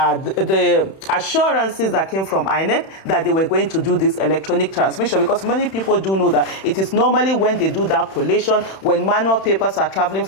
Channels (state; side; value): late; right; 31 ms